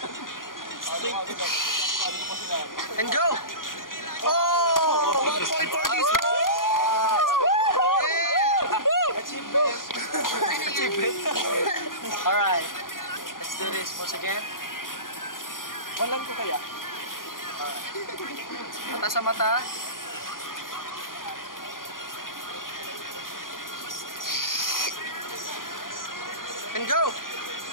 And go! Oh! 1 point for this one! Yeah! Achievement. Alright. Let's do this once again. Walang ko kaya. Mata sa mata. And go!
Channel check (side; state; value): right; late; 0.90 ms